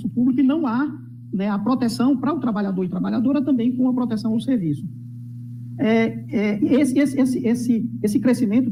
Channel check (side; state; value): both; identical; correlation 1.00